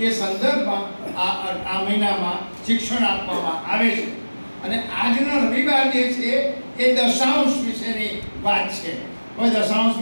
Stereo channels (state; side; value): inverted; both; correlation -1.00